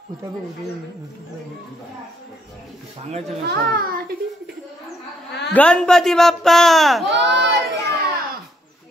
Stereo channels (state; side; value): normal; both; correlation 0.72